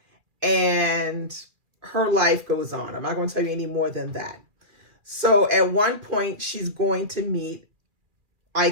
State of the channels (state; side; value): late; left; 2.4 ms